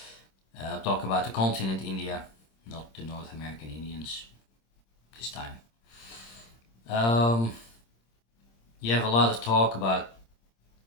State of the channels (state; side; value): late; right; 26 ms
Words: I'll talk about the continent India, not the North American Indians this time. Um, you have a lot of talk about